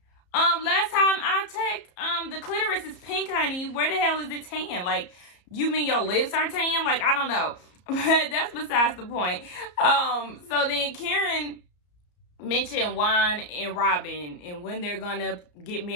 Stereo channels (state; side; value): late; right; 34 ms